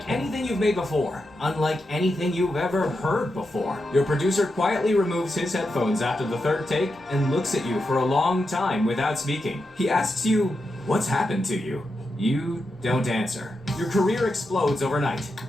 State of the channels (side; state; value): both; normal; correlation 0.87